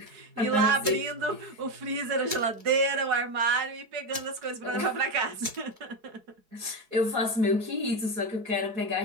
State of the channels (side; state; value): left; late; 4.7 ms